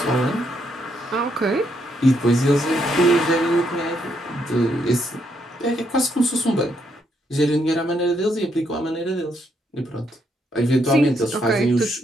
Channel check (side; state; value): both; normal; correlation 0.75